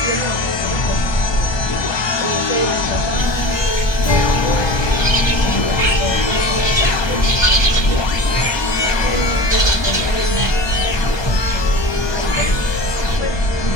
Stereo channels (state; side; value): late; right; 1.2 ms